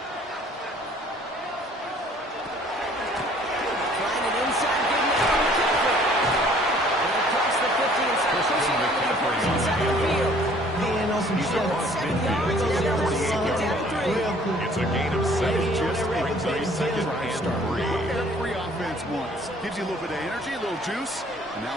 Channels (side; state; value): both; normal; correlation 0.56